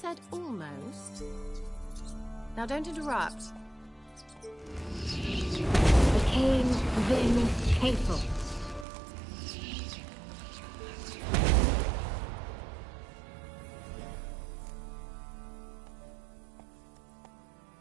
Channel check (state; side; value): drops out; left; at 8.8 s